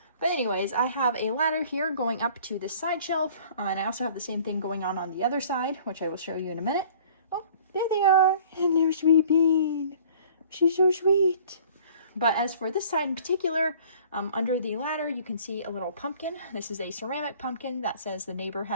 But anyways, I have a ladder here going up to this side shelf, and I also have the same thing going on the other side, which I will show you in a minute. Oh, there they are. Hello, sweet bean. She's so sweet. But as for this side in particular, under the ladder, you can see a little pumpkin. This is a ceramic pumpkin that says the neighbor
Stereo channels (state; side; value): inverted; both; correlation -0.51